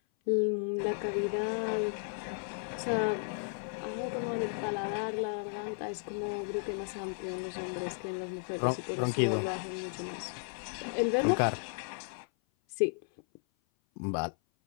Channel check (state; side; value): silent; right; 55 dB below the other